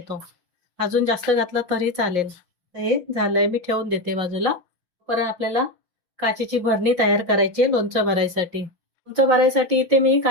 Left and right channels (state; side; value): late; left; 5.7 ms